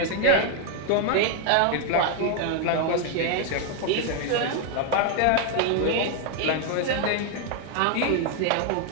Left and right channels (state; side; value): different; both; correlation 0.01